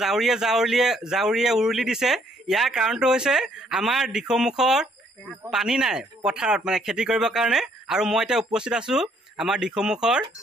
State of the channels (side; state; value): both; normal; correlation 0.67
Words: জাউৰীয়ে উৰুলি দিছে ইয়াৰ কাৰণটো হৈছে আমাৰ দিখৌমুখৰ পানী নাই পথাৰত মানে খেতি কৰিবৰ কাৰণে আৰু মই এতিয়া উপস্থিত আছো আমাৰ দিখৌমুখৰ